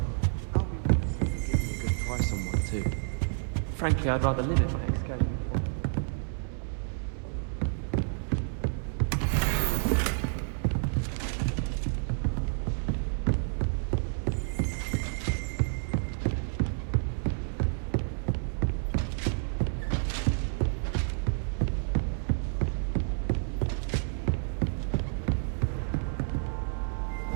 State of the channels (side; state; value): left; silent; digital silence